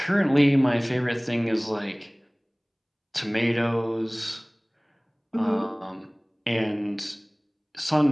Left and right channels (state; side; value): identical; both; correlation 1.00